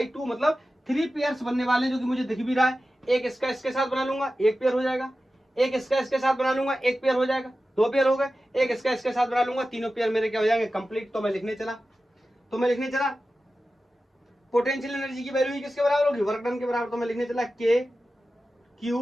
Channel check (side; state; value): both; normal; correlation 0.94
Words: मतलब 3 पेयर्स बनने वाले, जो कि मुझे दिख भी रहा है। एक इसका इसके साथ बना लूंगा, 1 पेयर हो जाएगा। एक इसका इसके साथ बना लूंगा, 1 पेयर हो जाएगा, 2 पेयर हो गए। एक इसका इसके साथ बना लूंगा, तीनों पेयर मेरे क्या हो जाएंगे, कंप्लीट। तो मैं लिखने चला पोटेंशियल एनर्जी की वैल्यू किसके बराबर होगी, वर्क डन के बराबर। तो मैं लिखने चला